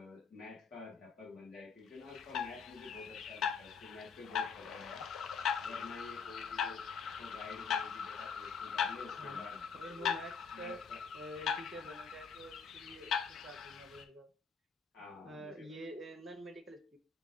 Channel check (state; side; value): quieter; right; 5.9 dB